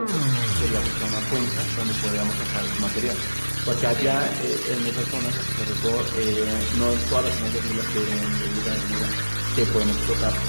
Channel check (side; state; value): both; inverted; correlation -1.00